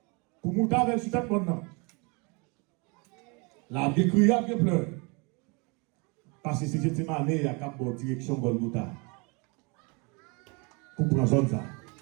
Pour monter avec le sujet maintenant. La bien crié, bien pleuré. Parce que c'est Gethsemane, il y a une bonne direction Golgotha. Pour prendre zone ça.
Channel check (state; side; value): quieter; left; 30.4 dB